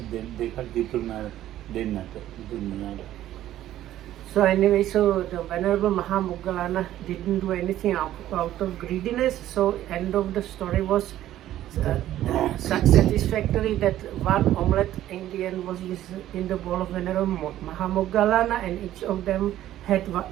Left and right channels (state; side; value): quieter; left; 13.1 dB